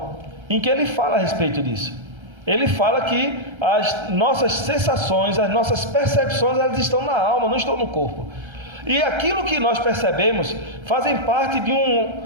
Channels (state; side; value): late; left; 1.3 ms